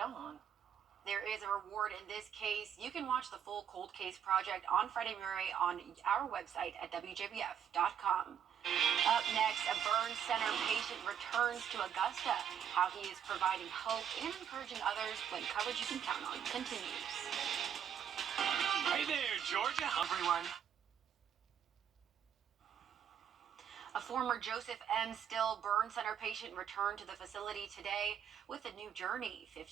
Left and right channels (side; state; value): left; quieter; 8.7 dB